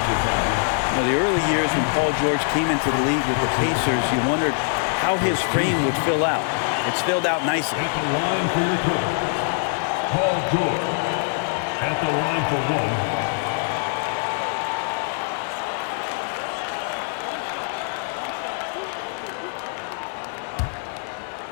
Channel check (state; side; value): silent; right; 59 dB below the other